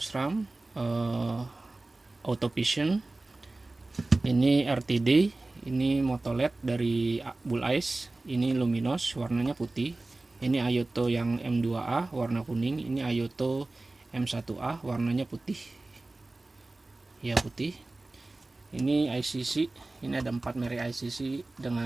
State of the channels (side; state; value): left; quieter; 3.0 dB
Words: Auto Vision, ini RTD, ini Moto LED dari Bull Ice, ini Luminos warnanya putih, ini Ayoto yang M2A warna kuning, ini Ayoto M1A warnanya putih ya, putih. Ini ICC, ini ada 4 merek ICC